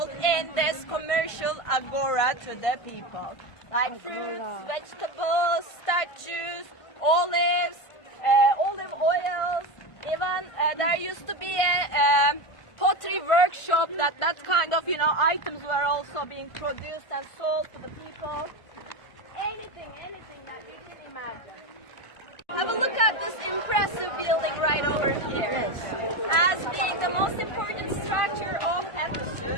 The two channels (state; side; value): late; right; 1.5 ms